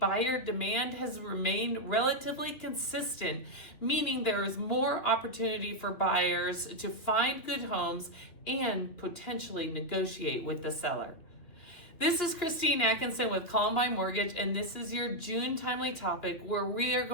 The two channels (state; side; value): late; right; 3.0 ms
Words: demand has remained relatively consistent, meaning there is more opportunity for buyers to find good homes and potentially negotiate with the seller. This is Christine Atkinson with Columbine Mortgage, and this is your June Timely Topic, where we are